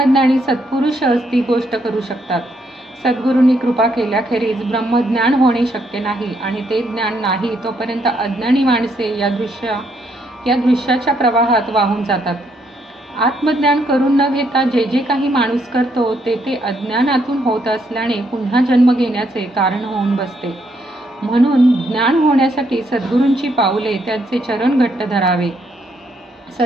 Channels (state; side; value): normal; both; correlation 0.74